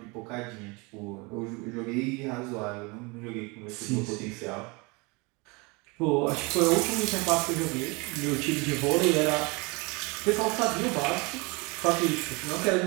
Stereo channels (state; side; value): quieter; left; 27.7 dB